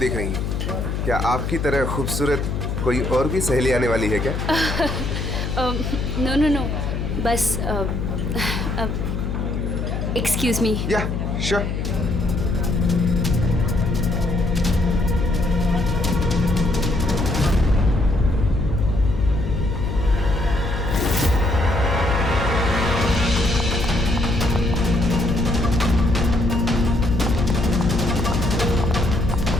रही हैं? क्या आपकी तरह खूबसूरत कोई और भी सहेली आने वाली है क्या? नो नो नो, बस एक्सक्यूज मी। या, श्योर।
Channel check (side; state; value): left; noise; hum, 2 dB below the sound